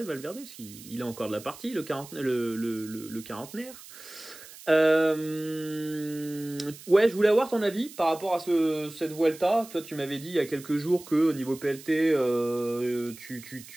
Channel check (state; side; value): noise; right; hiss, 17 dB below the sound